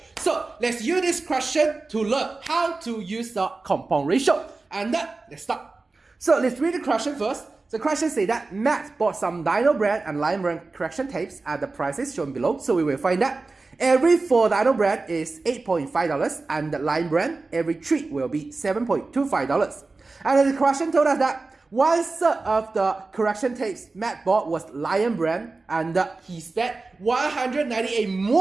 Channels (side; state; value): left; quieter; 3.6 dB